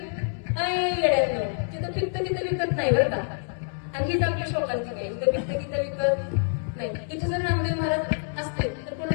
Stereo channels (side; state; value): right; silent; 60 dB below the other